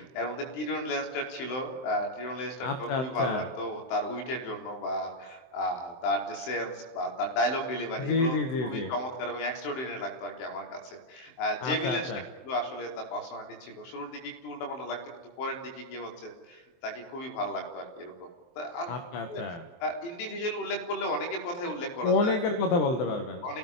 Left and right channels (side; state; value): right; late; 23 ms